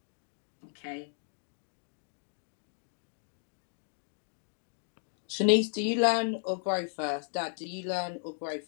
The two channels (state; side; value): silent; right; digital silence